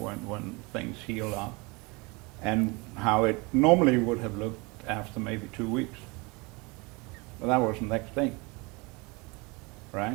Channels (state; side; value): quieter; left; 27.0 dB